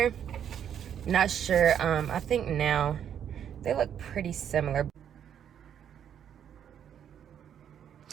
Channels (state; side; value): quieter; left; 9.1 dB